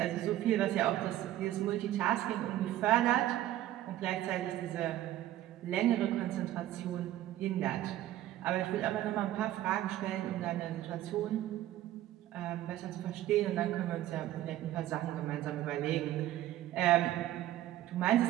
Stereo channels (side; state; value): left; quieter; 13.8 dB